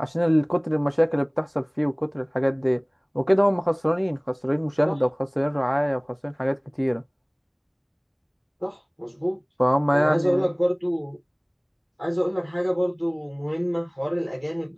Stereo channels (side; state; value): both; identical; correlation 1.00